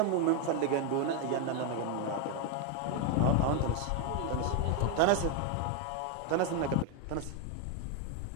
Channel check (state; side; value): different; both; correlation 0.01